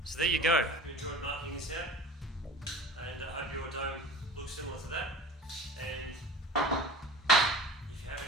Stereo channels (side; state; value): both; normal; correlation 0.37